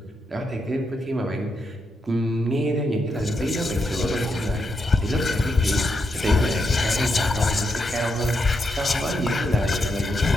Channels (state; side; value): normal; both; correlation 0.83